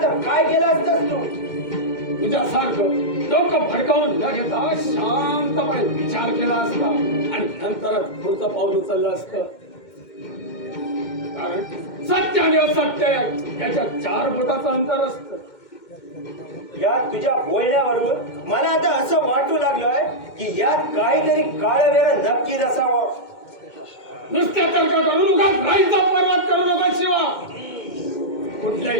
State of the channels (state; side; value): late; right; 2.2 ms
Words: तर काय केलं असतंस तू? तुझ्यासारखं डोकं फडकावून न घेता शांतपणे विचार केला असता आणि नंतरच पुढचं पाऊल उचललं असतं. कारण सत्य आणि असत्य याच्या 4 बोटाचं अंतर असतं. या तुझ्या बोलण्यावरून मला आता असं वाटू लागलंय की यात काहीतरी काळवेर नक्कीच असावं. नुसत्या तर्क करून उगाच राईचा पर्वत करू नका शिवा.